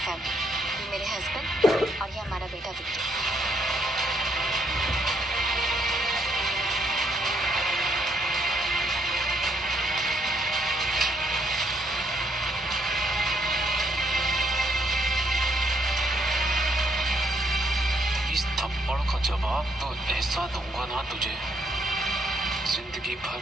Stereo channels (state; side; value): normal; both; correlation 0.72